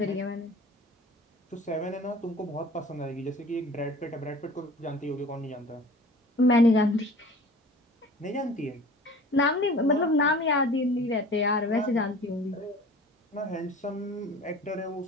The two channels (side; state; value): both; normal; correlation 0.43